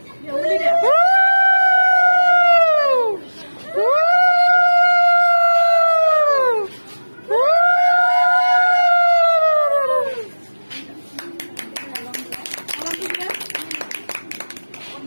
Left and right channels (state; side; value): inverted; both; correlation -1.00